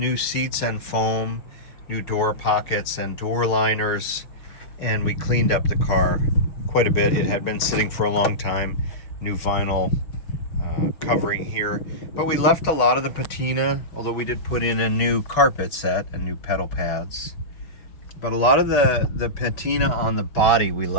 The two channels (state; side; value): late; right; 6.3 ms